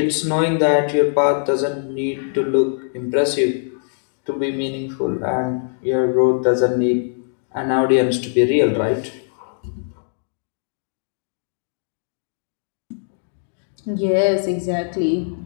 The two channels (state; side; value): silent; right; digital silence